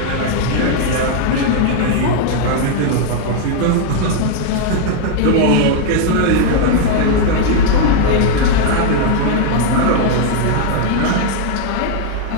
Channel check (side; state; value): both; different; correlation 0.00